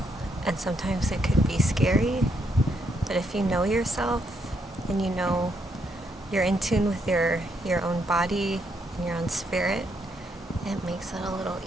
and sometimes it could be scary. But if you know yourself and you know you're in tune with your own body and your own spirit, it makes it a little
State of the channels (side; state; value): both; normal; correlation 0.76